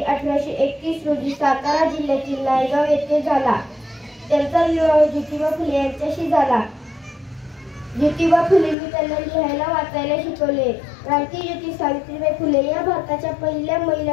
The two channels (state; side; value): drops out; right; at 8.8 s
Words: 1831 रोजी सातारा जिल्ह्यातील नायगाव येथे झाला। त्यांचा विवाह ज्योतिबा फुले यांच्याशी झाला। ज्योतिबा फुलेंनी त्यांना लिहायला वाचायला शिकवले। क्रांतिज्योती सावित्रीबाई फुले या भारताच्या पहिल्या